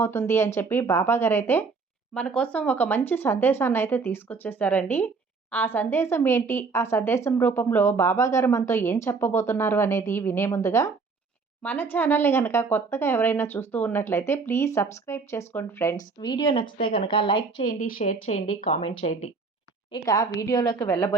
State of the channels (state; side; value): quieter; left; 4.5 dB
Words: అని చెప్పి బాబా గారైతే మన కోసం ఒక మంచి సందేశాన్ని అయితే తీసుకొచ్చేసారండి. ఆ సందేశం ఏంటి, ఆ సందేశం రూపంలో బాబా గారు మనతో ఏం చెప్పబోతున్నారు అనేది వినే ముందుగా మన ఛానల్ని కనుక కొత్తగా ఎవరైనా చూస్తూ ఉన్నట్లయితే ప్లీజ్ సబ్స్క్రైబ్ చేసుకోండి ఫ్రెండ్స్. వీడియో నచ్చితే కనుక లైక్ చేయండి, షేర్ చేయండి, కామెంట్ చేయండి. ఇక వీడియోలోకి